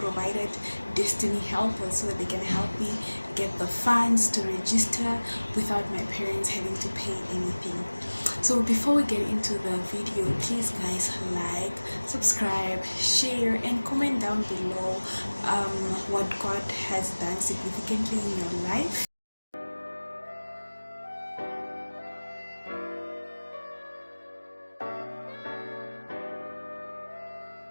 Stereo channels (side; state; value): both; inverted; correlation -1.00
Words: destiny helpers so that they can help me get the funds to register without my parents having to pay anything. So before we get into the video, please guys, like, subscribe, share and comment down below what God has done significantly in your life.